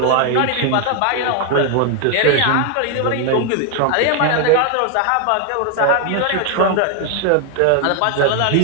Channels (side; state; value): both; different; correlation 0.00